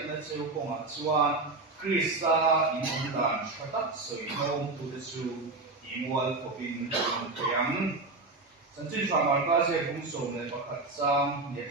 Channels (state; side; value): quieter; left; 3.4 dB